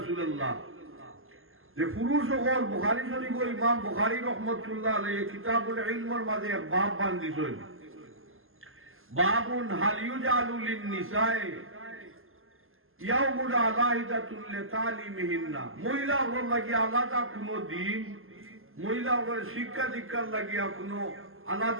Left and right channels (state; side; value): late; left; 0.60 ms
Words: যে পুরুষ সকল বুখারী শরীফ ইমাম বুখারী রহমতুল্লাহ আলাইহি কিতাবুল ইলমের মাঝে এক বাব বান্ধিছেন বাবুন হাল ইউজালু লিন নিসায়ে ইয়াউমুল আলাহিদাতুল লিতালিমিহিন্না মহিলা হল লাগিয়া আলাদা কোনো দিন মহিলা হলের শিক্ষা দীক্ষার লাগিয়া কোনো